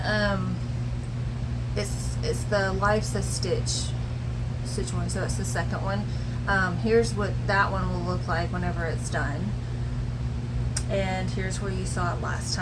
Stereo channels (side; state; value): both; identical; correlation 1.00